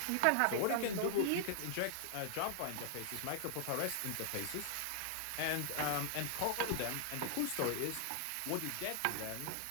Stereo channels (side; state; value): both; different; correlation -0.01